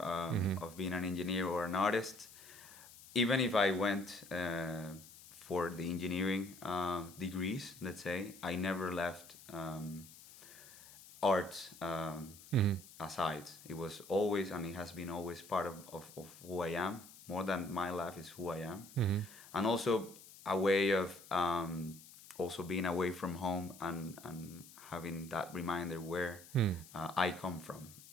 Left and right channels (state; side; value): noise; left; hiss, 19 dB below the sound